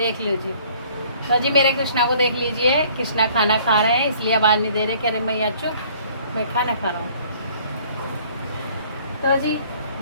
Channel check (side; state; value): both; inverted; correlation -0.56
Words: लीजिए। तो जी मेरे कृष्णा को देख लीजिए, कृष्णा खाना खा रहे हैं इसलिए आवाज़ नहीं दे रहे, कह रहे मैया चुप मैं खाना खा रहा हूँ। तो जी